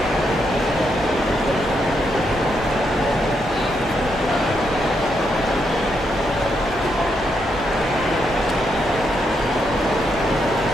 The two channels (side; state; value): both; normal; correlation 0.79